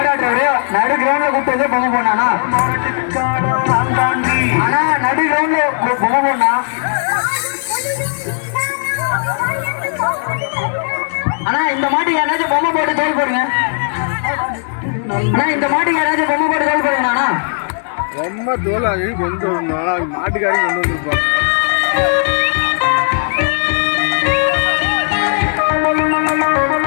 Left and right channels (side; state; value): right; silent; digital silence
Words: நடு கிரவுண்ட்ல கூப்பிட்டு பொம்மை போனானா? ஆனா நடு கிரவுண்ட்ல பொம்மை போனா ஆனா இந்த மாட்டுக்கு யாராச்சும் பொம்மை போட்டு தோல் போடுங்க. ஆனா இந்த மாட்டுக்கு யாராச்சும் பொம்மை போட்டு தோல் போடுங்க. ரொம்ப தோலாகி கொண்டு வரணும். மாட்டுக்காரி கொண்டு வந்துருப்பாங்க.